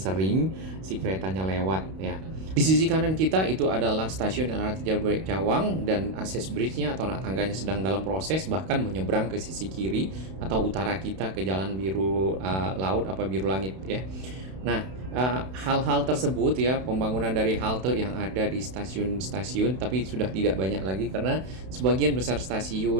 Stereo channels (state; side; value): late; left; 32 ms